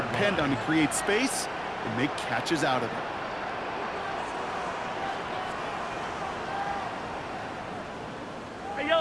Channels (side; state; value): both; identical; correlation 1.00